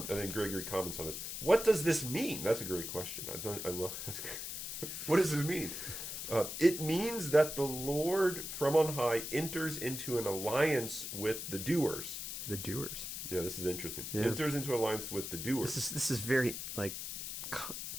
and then Gregory comments on this. What does this mean? That's a great question. I love. What does this mean? It means that the Lord from on high enters into an alliance with the doers. The doers. Yeah, this is interesting. Yeah. Enters into alliance with the doers. This is very like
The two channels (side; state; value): left; noise; hiss, 6 dB below the sound